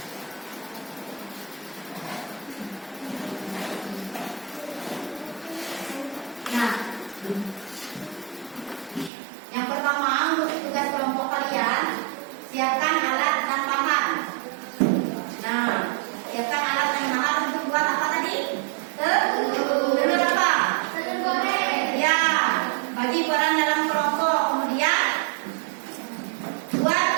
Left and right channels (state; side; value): drops out; left; at 9.1 s